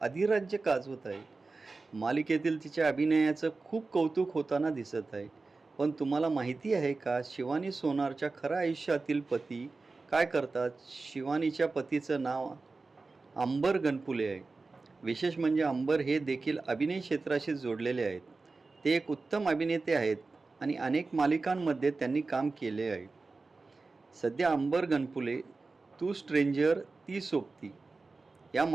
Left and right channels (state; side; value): quieter; left; 3.8 dB